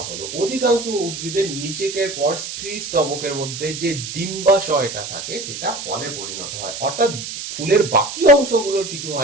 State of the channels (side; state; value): right; noise; hiss, 8 dB below the sound